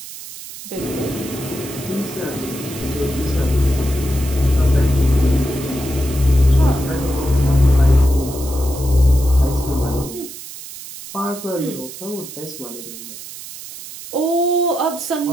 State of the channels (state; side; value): noise; right; hiss, 13 dB below the sound